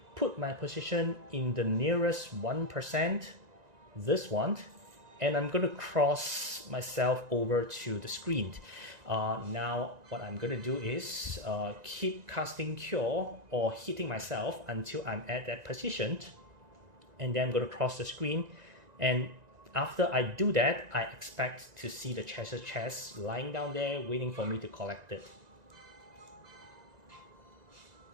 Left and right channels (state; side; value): late; left; 1.9 ms